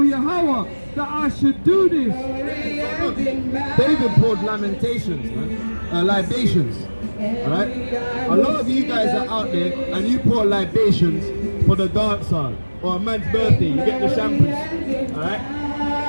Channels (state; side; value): inverted; both; correlation -1.00